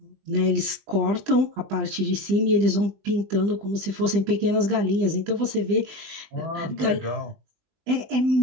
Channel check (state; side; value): late; left; 20 ms